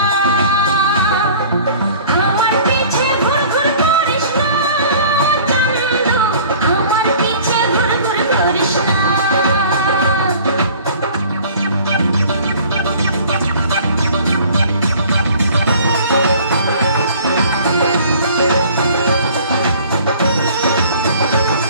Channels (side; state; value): both; inverted; correlation -0.49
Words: আমার পিছে ঘুর ঘুর করিস না, চান্দু আমার পিছে ঘুর ঘুর করিস না।